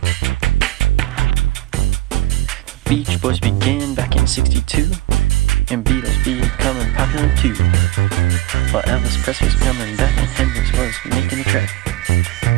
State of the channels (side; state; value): left; quieter; 17.5 dB